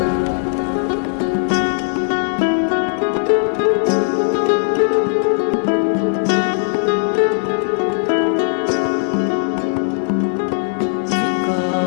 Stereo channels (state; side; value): silent; right; digital silence